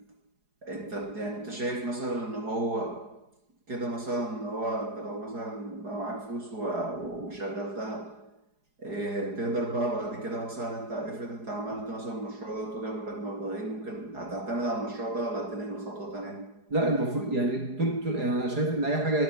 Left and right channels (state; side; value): late; left; 4.8 ms